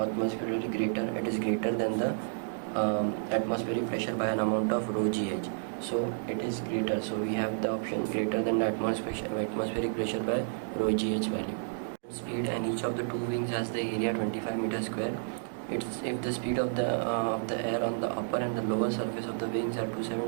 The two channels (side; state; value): left; silent; digital silence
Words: greater, it is greater than the atmospheric pressure by an amount of rho gh. So it is greater, so we have the option greater than the atmospheric pressure by rho gh value. Speed, and each of the two wings has the area 25 meters square. It's if the speed of the air on the upper and the lower surface of the wings are